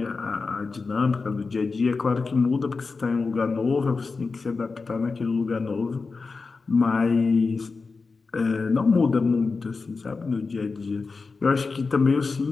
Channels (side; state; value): right; quieter; 4.3 dB